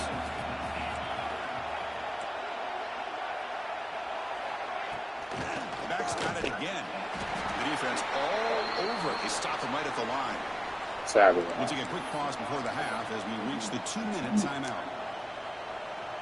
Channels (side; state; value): both; identical; correlation 1.00